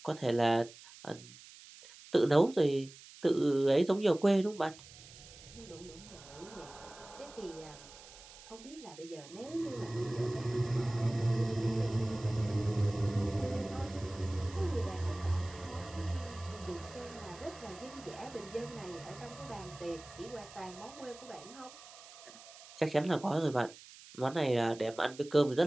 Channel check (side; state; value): right; noise; hiss, 19 dB below the sound